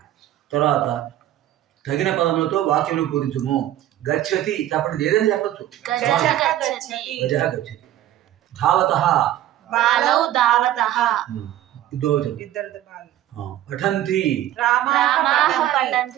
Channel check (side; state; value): left; quieter; 13.1 dB